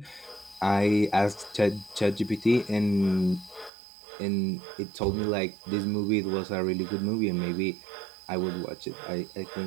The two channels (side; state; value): left; drops out; at 3.7 s